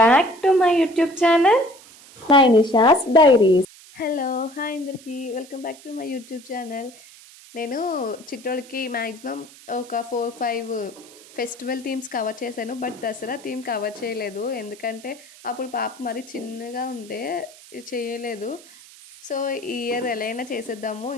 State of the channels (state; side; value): noise; right; hiss, 21 dB below the sound